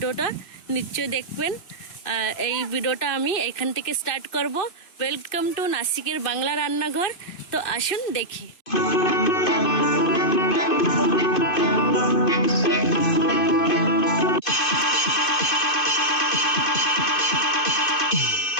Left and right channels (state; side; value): late; right; 2.5 ms